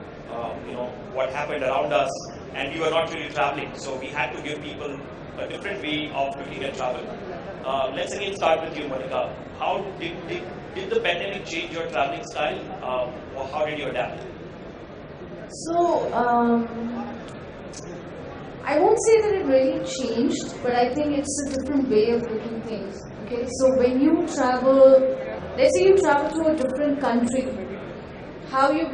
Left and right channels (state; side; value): identical; both; correlation 1.00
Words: what happened around us, and we were not really traveling, so we had to give people a different way of looking at travel. Let's again start with you, Monica. How did the pandemic change your traveling style, or how did you adapt? So, I won't say that it really changed, but I think it's a different way of looking things. Okay, so when you travel, let's say you travel to a different country, how you